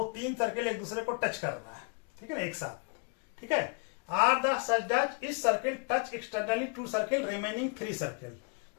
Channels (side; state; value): right; quieter; 36.9 dB